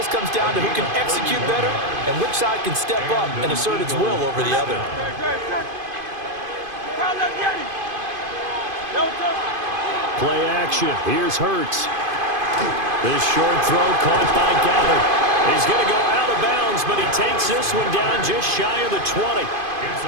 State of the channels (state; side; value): late; left; 2.5 ms